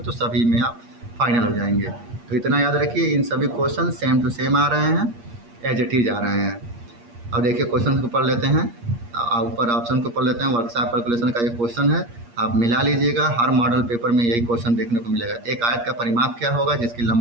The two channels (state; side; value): late; left; 8.5 ms